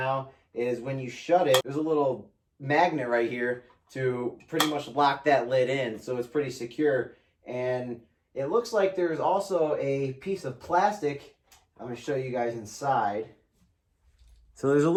is when you shut it, there's a little magnet right here to pretty much lock that lid in. So it's pretty secure. And it looks like there's also a piece of plastic. I'm going to show you guys inside. So there's a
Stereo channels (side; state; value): both; identical; correlation 1.00